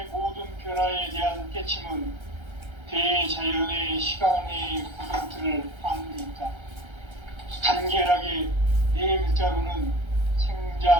모든 변화에 대한 깨침은 대자연의 시간의 구성틀을 아는 데 있다. 간결하게 네 글자로는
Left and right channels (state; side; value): late; left; 1.3 ms